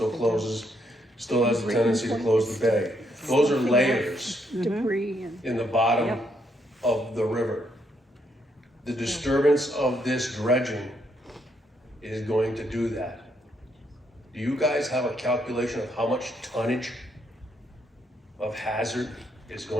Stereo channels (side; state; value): both; normal; correlation 0.75